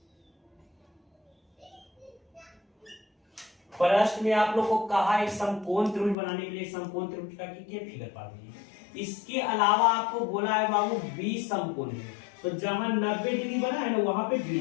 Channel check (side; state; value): right; drops out; at 6.2 s